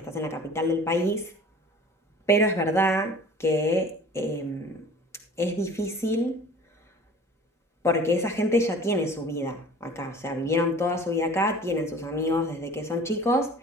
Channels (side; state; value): both; normal; correlation 0.45